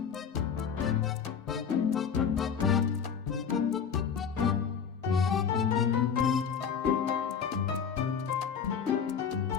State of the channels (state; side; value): quieter; right; 7.0 dB